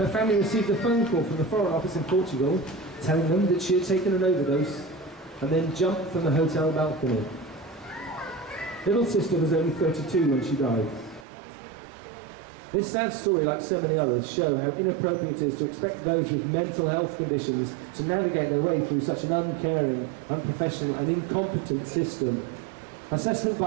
family received a phone call from the Foreign Office in Portugal telling them that she had taken an overdose and then jumped from the hotel balcony. Little sister was only 32 when she died. This sad story, like so many others, show how inappropriate it is to expect those with mental health conditions to navigate their way through such an uncaring, unprofessional and incompetent system. Assessment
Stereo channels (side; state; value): left; drops out; at 11.2 s